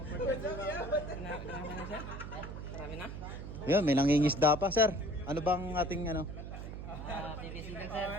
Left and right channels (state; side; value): noise; right; hum, 8 dB below the sound